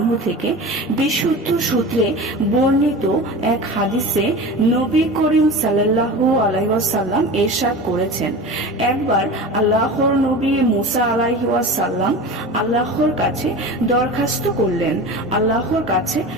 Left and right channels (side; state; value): both; normal; correlation 0.32